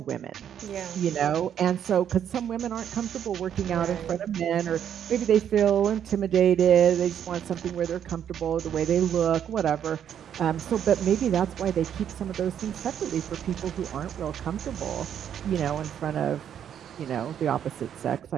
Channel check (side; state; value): left; quieter; 9.3 dB